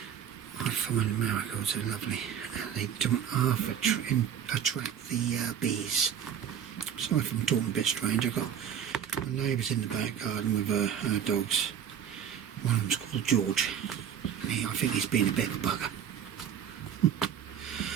I find marigolds are lovely and they don't half attract the bees. Sorry if I'm talking a bit strange. I've got my neighbours in the back garden with her dogs. One of them's called George. I think he's been a bit of a bugger.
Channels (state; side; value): quieter; left; 8.8 dB